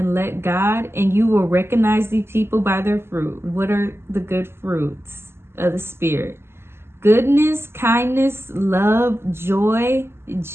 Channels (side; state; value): left; late; 0.12 ms